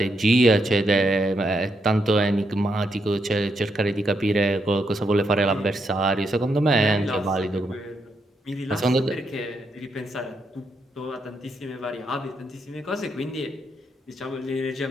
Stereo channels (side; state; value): both; normal; correlation 0.80